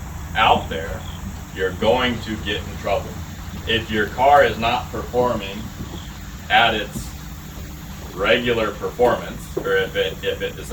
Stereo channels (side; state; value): both; identical; correlation 1.00